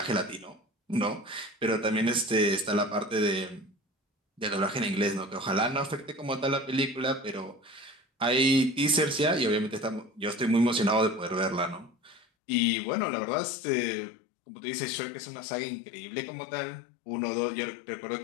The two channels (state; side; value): drops out; right; at 12.2 s